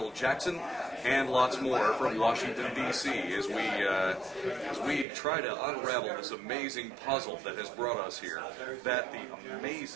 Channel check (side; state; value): left; drops out; at 5.1 s